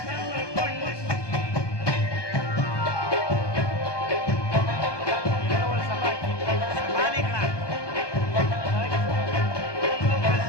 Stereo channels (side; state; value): right; late; 1.2 ms